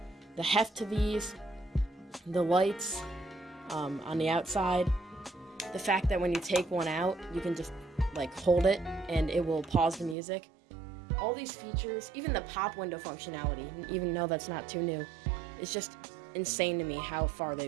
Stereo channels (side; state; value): left; drops out; at 10.2 s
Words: the heft to these, the lights on the outside, the fact that when you take one out, you can just like hold it and it will pause the music. All these features, even the pop window functionality, even though that's not too new, it's just insane to me how far